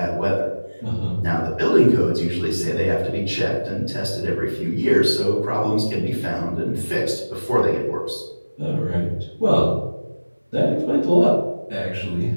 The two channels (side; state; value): both; inverted; correlation -1.00